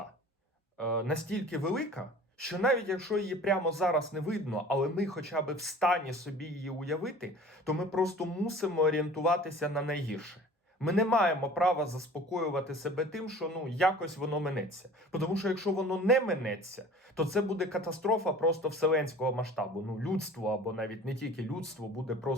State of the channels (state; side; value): normal; both; correlation 0.44